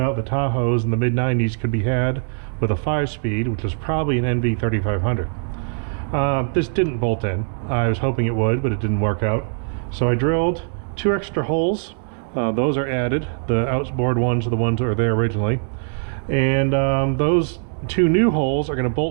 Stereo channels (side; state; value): left; silent; 65 dB below the other